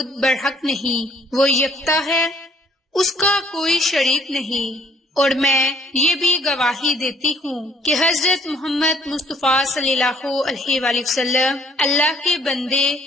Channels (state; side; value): normal; both; correlation 0.61